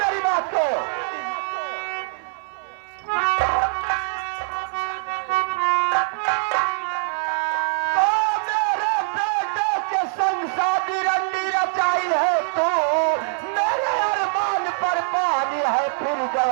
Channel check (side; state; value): left; silent; 57 dB below the other